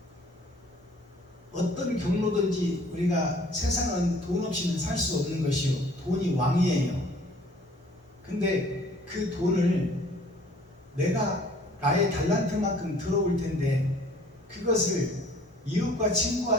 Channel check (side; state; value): both; normal; correlation 0.54